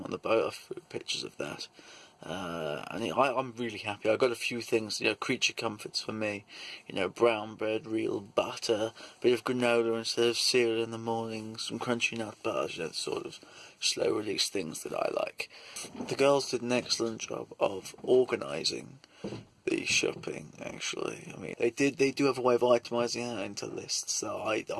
on the boat. I've pictures of that. And I'm really happy. I got a few things, creature comforts for me. Brown bread, real butter, a bit of granola instead of cereal in the morning, some crunchy nut bars, the sort of slow release things that I like. The girls did an excellent job of organising the shopping, actually. I mean, they do have a way of itemising it into lists, so I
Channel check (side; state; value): both; identical; correlation 1.00